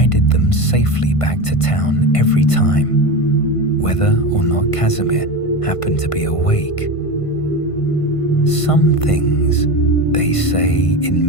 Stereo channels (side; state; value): right; late; 1.5 ms